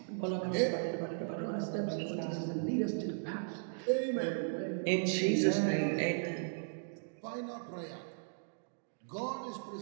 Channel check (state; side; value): silent; left; digital silence